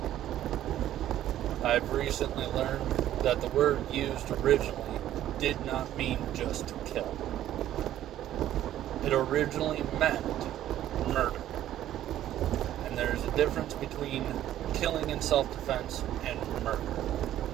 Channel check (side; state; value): left; quieter; 12.4 dB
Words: I've recently learned that the word used originally did not mean just to kill. It originally meant murder. And there's a difference between killing in self-defense and murder.